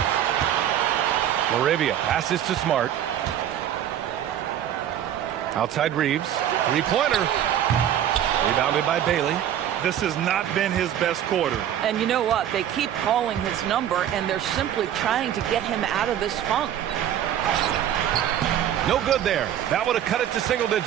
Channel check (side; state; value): left; quieter; 10.7 dB